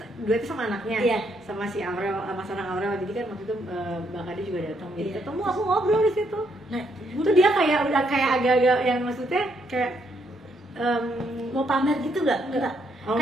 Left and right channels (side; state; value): both; normal; correlation 0.74